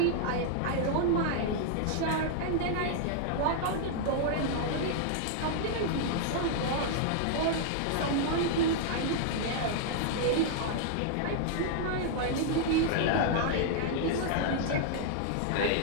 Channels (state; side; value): different; both; correlation -0.01